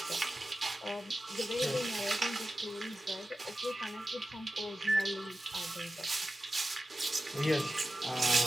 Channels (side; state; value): both; normal; correlation 0.94